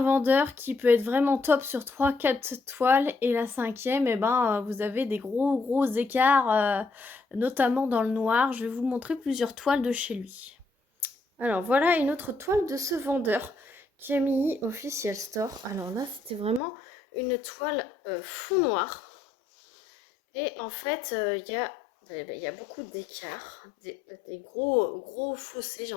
vendeur qui peut être vraiment top sur 3-4 toiles et la cinquième, vous avez des gros écarts, notamment dans le noir. Je vais vous montrer plusieurs toiles de chez lui. Alors voilà une autre toile de ce vendeur, Camille Official Store. Alors là, c'était vraiment une toile fond noir. Et en fait, il y a beaucoup d'écarts, des gros fossés, j'ai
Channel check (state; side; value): drops out; right; at 16.6 s